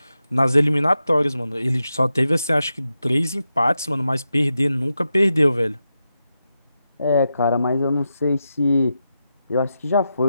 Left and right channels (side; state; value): both; inverted; correlation -0.88